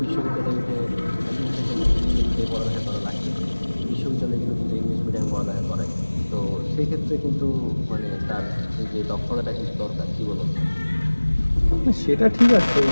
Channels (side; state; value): both; inverted; correlation -1.00